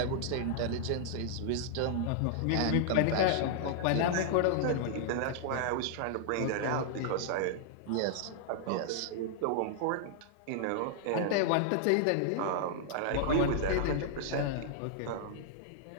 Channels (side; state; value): both; different; correlation -0.01